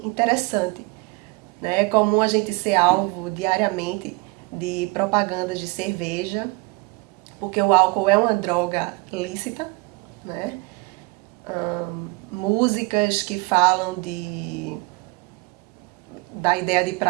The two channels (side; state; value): left; quieter; 25.6 dB